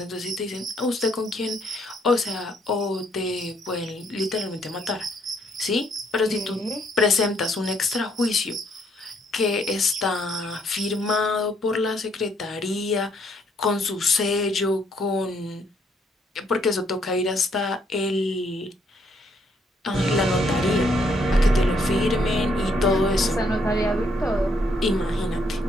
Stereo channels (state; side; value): normal; both; correlation 0.70